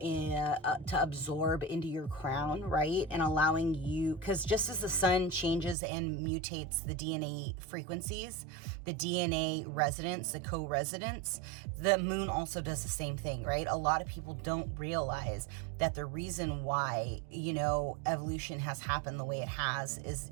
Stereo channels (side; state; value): left; drops out; at 5.8 s